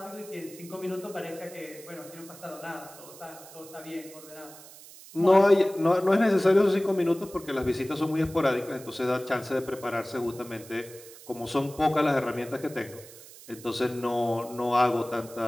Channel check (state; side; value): noise; right; hiss, 18 dB below the sound